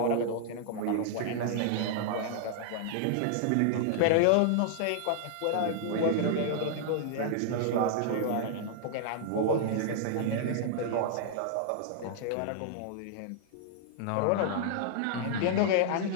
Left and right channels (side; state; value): both; different; correlation -0.01